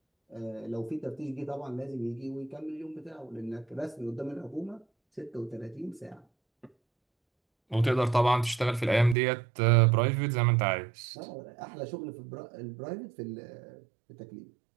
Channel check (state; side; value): drops out; left; at 9.2 s